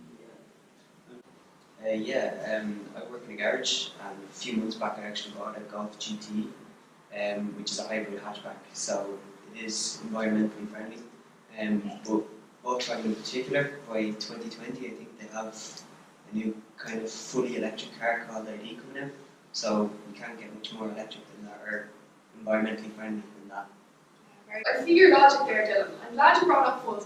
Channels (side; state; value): both; identical; correlation 1.00